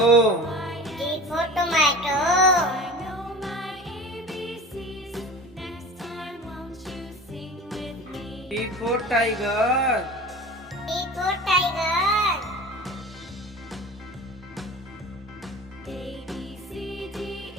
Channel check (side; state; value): both; normal; correlation 0.37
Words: T for tomato. T for tiger. T for tiger.